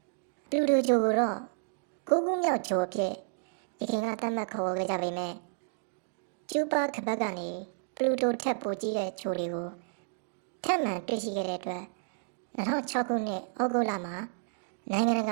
ပလူတိုဂျိုကိုတော့9ခုမြောက်ဂျိုအဖြစ်ဒီခင်ကသတ်မှတ်ခေါ်ခဲ့ကြပေမဲ့ကျူပါကပတ်ကနေပလူတိုထက်ပိုကြီးတဲ့ဂျိုတွေကိုထပ်မံတွေ့ရှိခဲ့တဲ့အတွက်2006ခုနှစ်ဩဂုတ်လမှာနိုင်ငံတက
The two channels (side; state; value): left; silent; digital silence